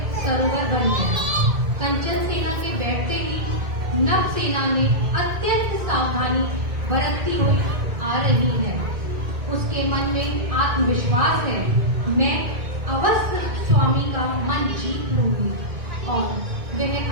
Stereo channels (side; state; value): left; late; 2.0 ms